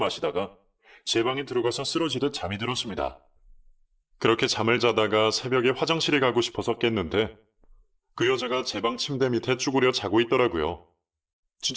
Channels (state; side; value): identical; both; correlation 1.00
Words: 제 방에 들어가서 쓰러지듯 잠이 들었습니다. 그렇게 잠을 자다가 새벽에 화장실에 가고 싶어서 깼는데 그 여자가 제 방 침대 밑에 쭈그려 자고 있더라고요.